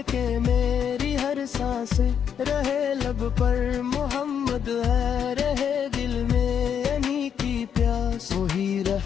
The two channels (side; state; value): right; quieter; 8.1 dB